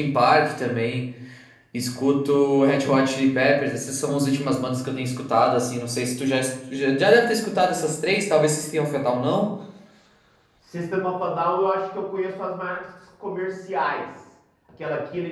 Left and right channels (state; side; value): identical; both; correlation 1.00